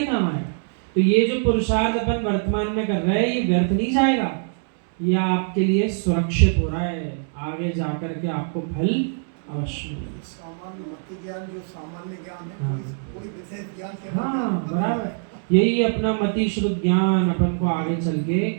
काम आएगा। तो ये जो पुरुषार्थ अपन वर्तमान में कर रहे हैं ये व्यर्थ नहीं जाएगा, यह आपके लिए सुरक्षित हो रहा है, आगे जाकर के आपको फल अवश्य मिलेगा। सामान्य मति ज्ञान जो सामान्य ज्ञान है, हाँ। कोई विशेष ज्ञान के हाँ बराबर, यही अपना मति शुद्ध ज्ञान अपन को आगे चल के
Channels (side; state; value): left; silent; 63 dB below the other